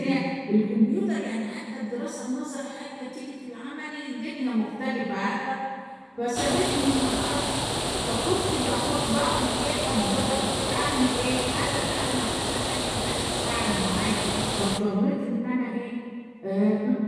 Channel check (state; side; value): identical; both; correlation 1.00